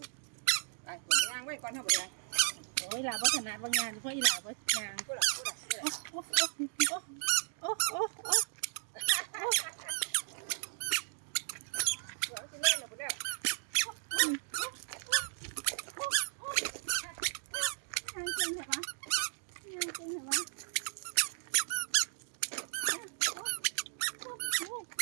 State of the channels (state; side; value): silent; left; digital silence